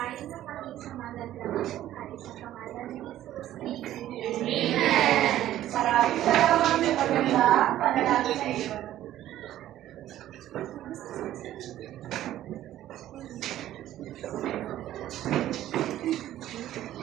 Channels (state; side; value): quieter; left; 13.1 dB